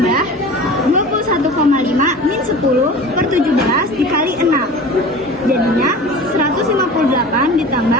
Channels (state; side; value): normal; both; correlation 0.37